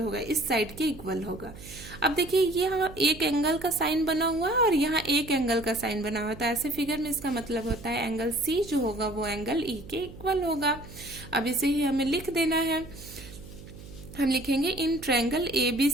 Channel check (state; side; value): noise; right; hum, 16 dB below the sound